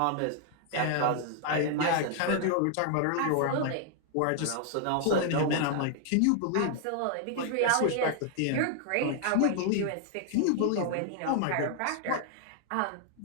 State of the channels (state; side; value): different; both; correlation 0.00